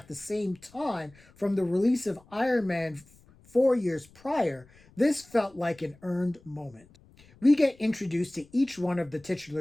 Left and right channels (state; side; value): noise; left; rumble, 27 dB below the sound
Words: the same time, from the release of Iron Man 4 years prior, this felt like an earned moment. We get introduced to each one of the